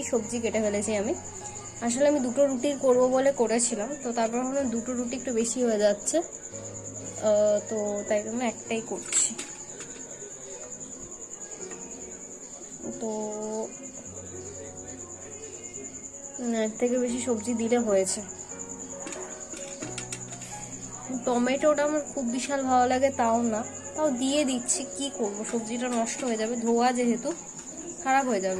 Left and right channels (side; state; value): both; identical; correlation 1.00